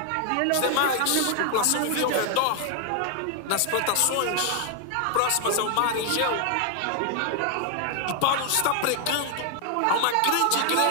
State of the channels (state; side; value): different; both; correlation 0.00